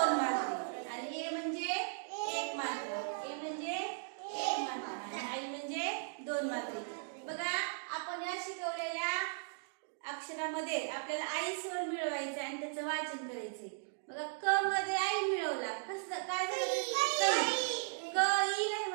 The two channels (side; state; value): left; silent; digital silence